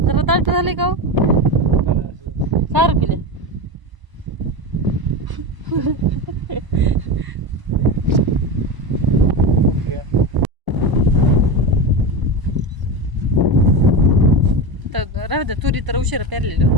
जरा दाट झाले का सारं पिले. तर राहू द्या, तुरी तर उशिरा पेरलेली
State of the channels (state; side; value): late; left; 1.0 ms